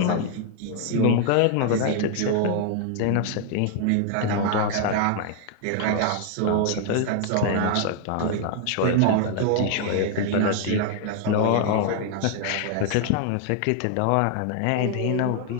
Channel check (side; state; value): both; different; correlation 0.00